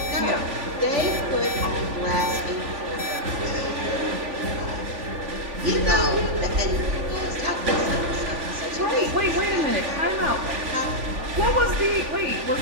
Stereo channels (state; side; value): late; left; 3.5 ms